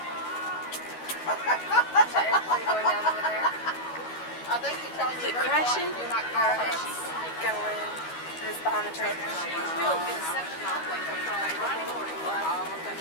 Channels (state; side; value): late; right; 12 ms